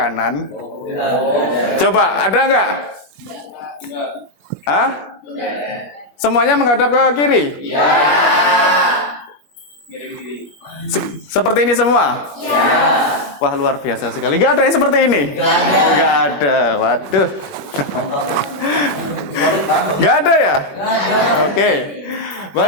Coba, ada nggak? Hah? Semuanya menghadap ke kiri? Ya. Seperti ini semua? Ya. Wah, luar biasa sekali. Nggak ada yang seperti ini? Nggak ada. Waduh. Nggak ada ya? Oke.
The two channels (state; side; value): late; right; 21 ms